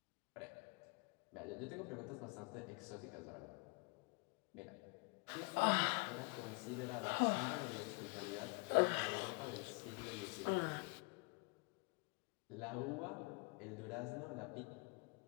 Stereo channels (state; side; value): quieter; right; 30.9 dB